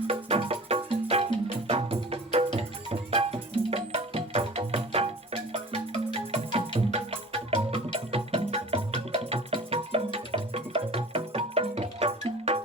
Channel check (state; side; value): normal; both; correlation 0.41